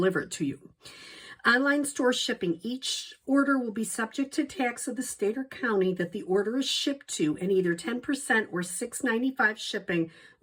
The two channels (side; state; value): both; identical; correlation 1.00